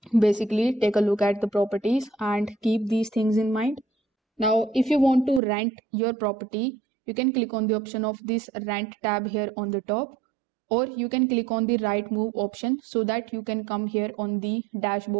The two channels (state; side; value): drops out; left; at 5.4 s